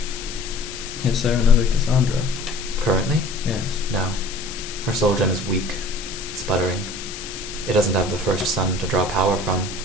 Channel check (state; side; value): noise; left; hiss, 10 dB below the sound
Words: Is there another Cassandra? Currently? Yes. No. Her soul gem is weak, sputtering. It doesn't have the first sun to draw power from,